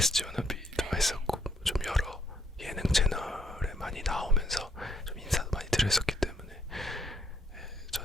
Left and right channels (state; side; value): normal; both; correlation 0.70